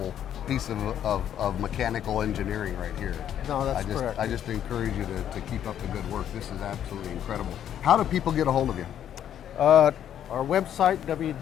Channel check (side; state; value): right; quieter; 10.1 dB